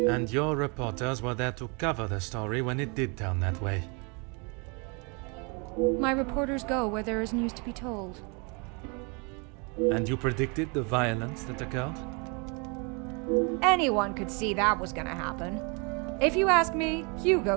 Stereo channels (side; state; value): left; quieter; 33.0 dB